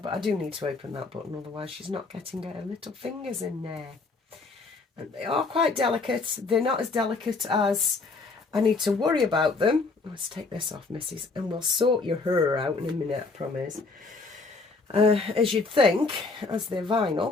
I do need to open that button, otherwise she's not getting her little fingers in there. And they are quite delicate. They're not as delicate as I need to worry about them. Let's take this off, missus, and we'll sort your hair out in a minute, I promise. As you'd think, as they're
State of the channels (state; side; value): quieter; right; 3.9 dB